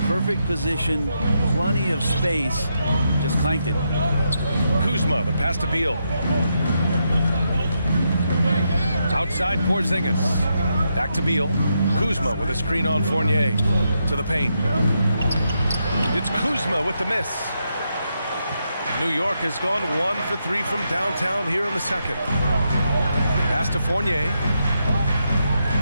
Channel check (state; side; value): inverted; both; correlation -0.82